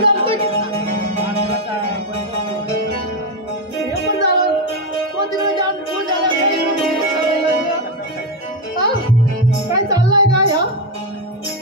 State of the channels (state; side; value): normal; both; correlation 0.07